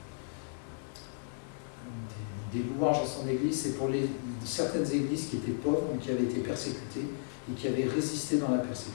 des louanges à son église, c'est pour certaines églises qui étaient pauvres, mais qui avaient été persécutées et qui avaient résisté dans la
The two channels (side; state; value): right; silent; digital silence